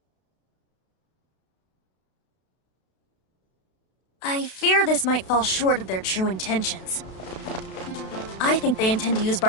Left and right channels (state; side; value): late; right; 32 ms